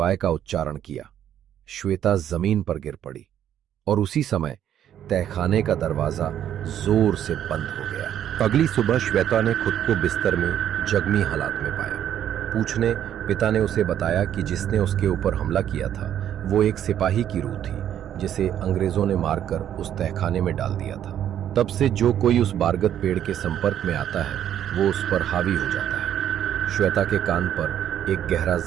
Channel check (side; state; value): left; quieter; 10.4 dB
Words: का उच्चारण किया। श्वेता जमीन पर गिर पड़ी और उसी समय तहखाने का दरवाजा जोर से बंद हो गया। अगली सुबह श्वेता ने खुद को बिस्तर में जख्मी हालात में पाया। पूछने पिता ने उसे बताया कि जिसने उसके ऊपर हमला किया था वो एक सिपाही की रूह थी, जिसे अंग्रेजों ने मारकर उस तहखाने में डाल दिया था। तब से जो कोई उस बारगद पेड़ के संपर्क में आता है वो उस पर हावी हो जाता है। श्वेता के कान पर एक गहरा